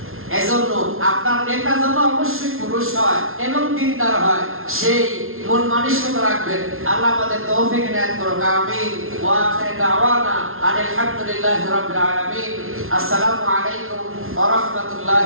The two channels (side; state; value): left; late; 0.61 ms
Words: এজন্য আপনার নেতা যেন অবশ্যই পুরুষ হয় এবং দিনদার হয়, সেই মন মানসিকতা রাখবেন। আল্লাহ আমাদের তৌফিক দান করুন, আমিন। ওয়া আখিরু দাওয়ানা আলহামদুলিল্লাহি রাব্বিল আলামিন। আসসালামু আলাইকুম ওয়া